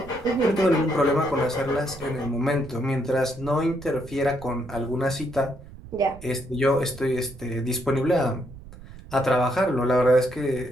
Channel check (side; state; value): right; noise; rumble, 17 dB below the sound